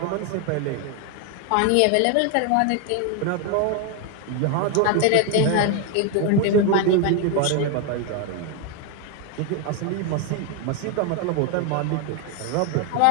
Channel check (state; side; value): different; both; correlation 0.01